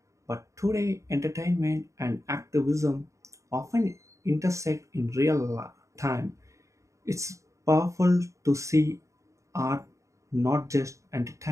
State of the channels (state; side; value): late; left; 0.15 ms